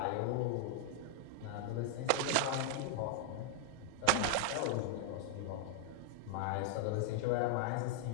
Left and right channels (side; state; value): both; different; correlation 0.00